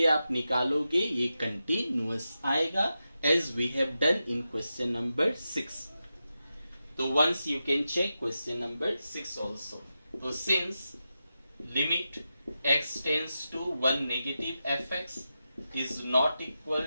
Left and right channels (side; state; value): both; inverted; correlation -0.90